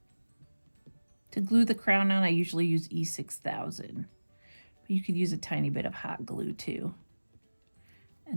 To glue the crown on, I usually use E6000. But you could use a tiny bit of hot glue too.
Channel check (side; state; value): both; inverted; correlation -1.00